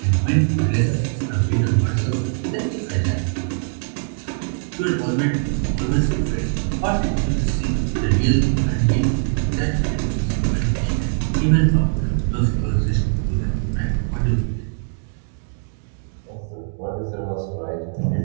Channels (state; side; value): silent; left; 63 dB below the other